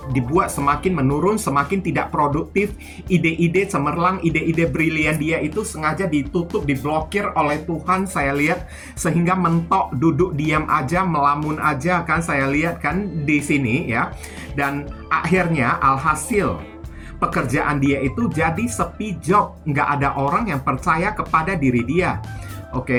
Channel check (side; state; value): both; identical; correlation 1.00